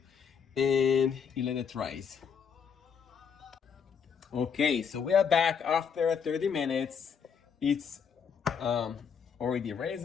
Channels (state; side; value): quieter; right; 6.8 dB